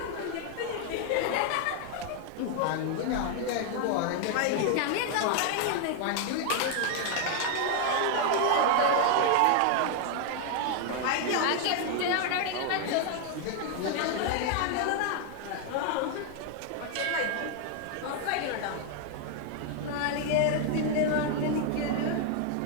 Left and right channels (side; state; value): both; different; correlation 0.00